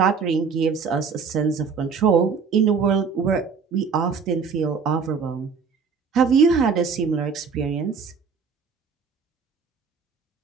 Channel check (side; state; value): left; quieter; 5.7 dB